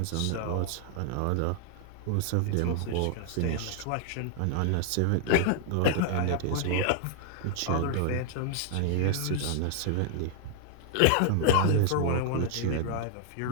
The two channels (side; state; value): both; different; correlation 0.00